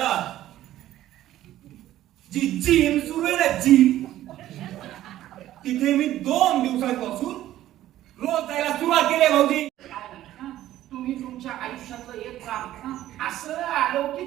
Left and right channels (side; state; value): left; quieter; 13.6 dB